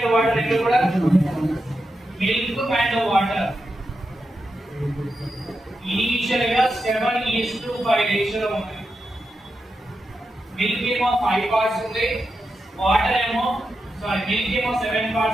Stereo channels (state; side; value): normal; both; correlation 0.88